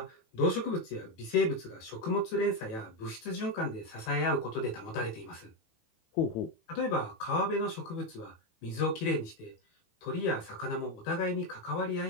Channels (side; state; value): right; late; 18 ms